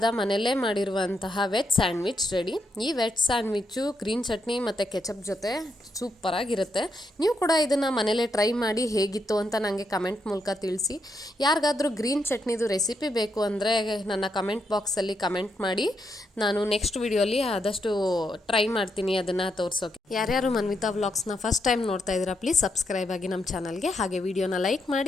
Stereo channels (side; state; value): both; normal; correlation 0.80